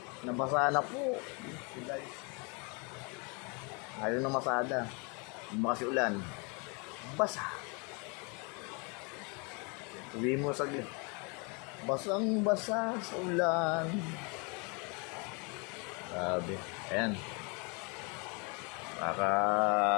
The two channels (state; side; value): quieter; right; 32.1 dB